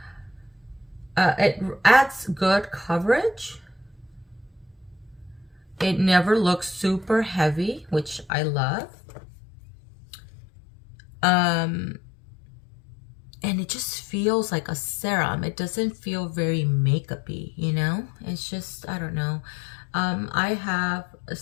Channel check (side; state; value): right; drops out; at 8.3 s